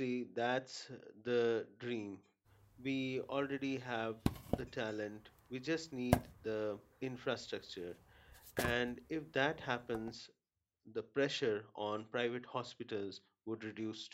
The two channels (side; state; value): both; identical; correlation 1.00